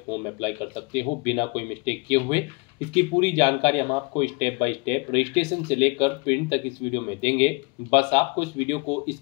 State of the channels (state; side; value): quieter; right; 29.0 dB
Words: अप्लाई कर सकते हो बिना कोई मिस्टेक किए हुए, इसकी पूरी जानकारी हम आपको स्टेप बाय स्टेप रजिस्ट्रेशन से लेकर प्रिंट तक इस वीडियो में देंगे। बस आपको इस वीडियो को